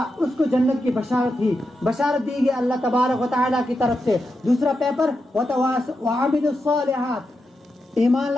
اس کو جنت کی بشارت دی گئی اللہ تبارک و تعالیٰ کی طرف سے۔ دوسرا پیپر وعملوا الصالحات، ایمان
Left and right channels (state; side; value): normal; both; correlation 0.87